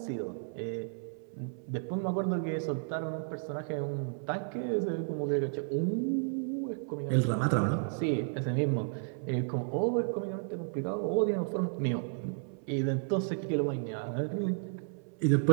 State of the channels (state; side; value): silent; left; 56 dB below the other